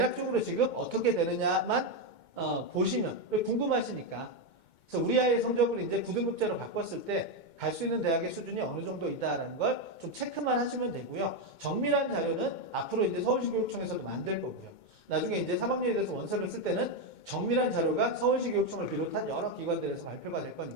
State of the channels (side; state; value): right; late; 2.2 ms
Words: 지금 어떻게 되느냐만 보시면 궁금하시니까. 그래서 우리 아이의 성적을 이제 9등급제로 바꿨을 때 갈 수 있는 대학의 수준이 어느 정도 있다라는 걸 좀 체크만 하시면 되고요. 정밀한 자료는 앞으로 이제 서울시 교육청에서도 만들 거고요. 나중에 이제 3학년에 대해서 원서를 쓸 때는 정밀한 자료가 서울시 교육청을 비롯한 여러 기관들에서 발표가 될